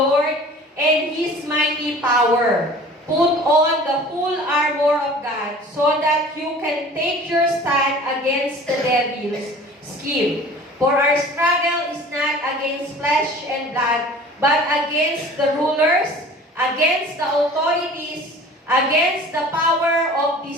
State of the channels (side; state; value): both; normal; correlation 0.44